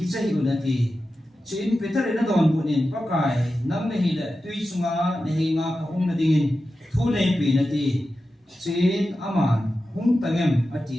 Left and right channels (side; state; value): both; normal; correlation 0.92